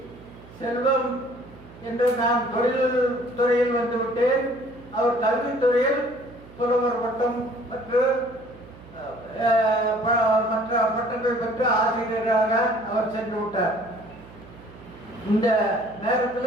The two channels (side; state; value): right; noise; hum, 20 dB below the sound